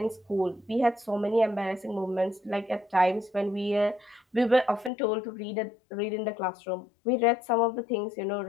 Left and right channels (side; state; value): right; drops out; at 4.9 s